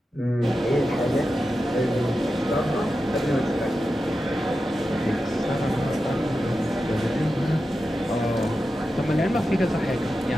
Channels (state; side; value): normal; both; correlation 0.91